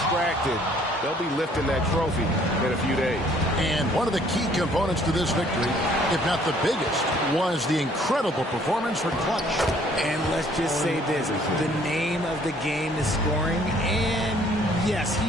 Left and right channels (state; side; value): normal; both; correlation 0.60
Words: They'll be lifting that trophy in a few days. And one of the key components to this victory, if not the biggest, was the incredible performance for Clutch. And let's just say this, the name of the game is scoring, and yes,